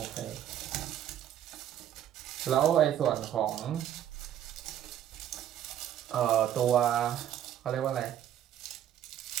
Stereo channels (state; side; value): quieter; left; 10.9 dB